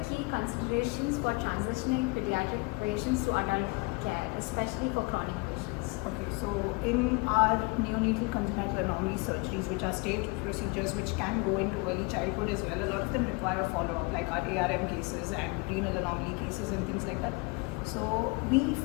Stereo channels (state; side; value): quieter; right; 28.0 dB